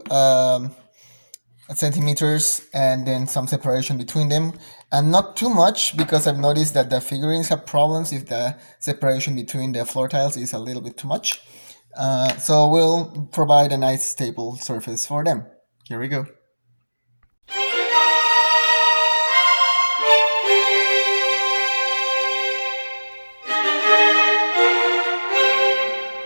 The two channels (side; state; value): both; inverted; correlation -1.00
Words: centimeters and then some separation between them. And not too much because I've noticed that the figurines have problems if the separation between the floor tiles is a little bit too much. So we'll provide a nice stable surface for them. Here we go.